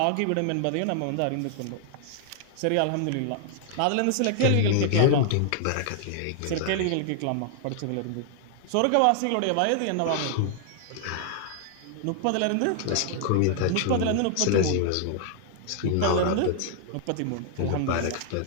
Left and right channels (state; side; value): different; both; correlation 0.00